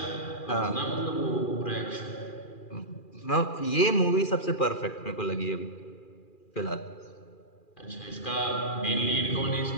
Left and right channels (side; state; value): right; late; 2.4 ms